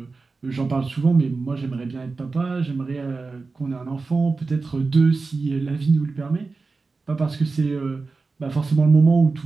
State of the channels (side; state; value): left; quieter; 4.0 dB